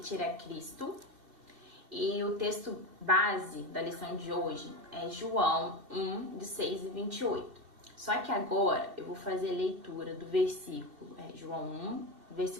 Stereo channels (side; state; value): left; late; 2.7 ms